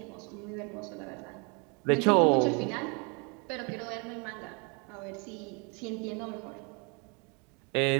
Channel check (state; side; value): quieter; left; 32.2 dB